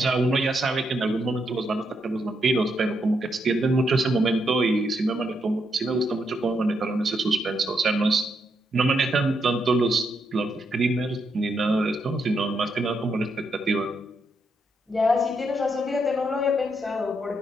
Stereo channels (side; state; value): both; normal; correlation 0.79